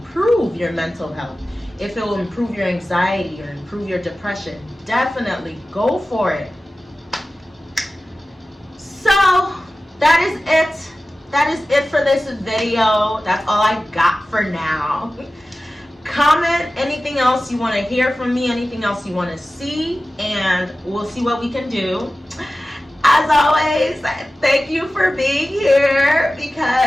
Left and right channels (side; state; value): both; normal; correlation 0.95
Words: your mental health, if it will improve your anxiety or improve your depression. Definitely go for it. So that is it. That is it for this video. That's all I got for now. Comment anything else you want to hear from me, anything else you want to see, and we'll see what we can do. As always, thank you for being here,